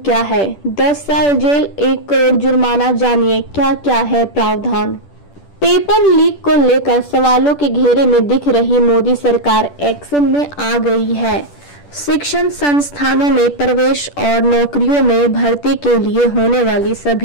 है? 10 साल जेल, 1 करोड़ जुर्माना। जानिए क्या क्या है प्रावधान। पेपर लीक को लेकर सवालों के घेरे में दिख रही मोदी सरकार एक्शन में आ गई है। शिक्षण संस्थानों में प्रवेश और नौकरियों में भर्ती के लिए होने वाली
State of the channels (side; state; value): right; late; 10 ms